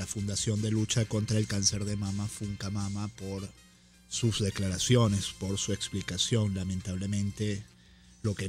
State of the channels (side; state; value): both; identical; correlation 1.00